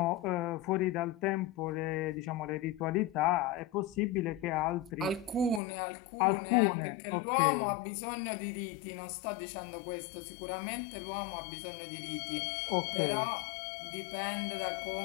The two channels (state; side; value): drops out; right; at 5.6 s